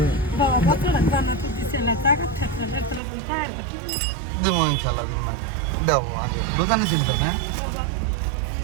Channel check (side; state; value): left; drops out; at 3.0 s